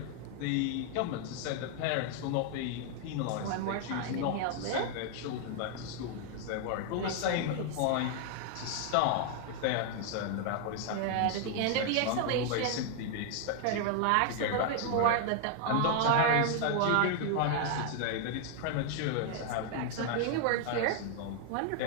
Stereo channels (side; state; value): both; different; correlation 0.00